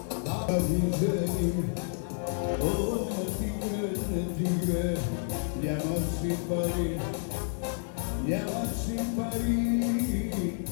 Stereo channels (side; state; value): right; silent; digital silence